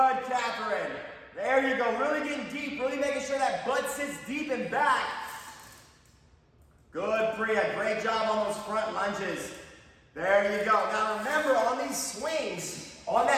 Catherine. There you go. Really getting deep. Really making sure that butt sits deep and back. Good, Priya. Great job on those front lunges. There you go. Now remember, on these swings, on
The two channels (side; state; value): both; identical; correlation 1.00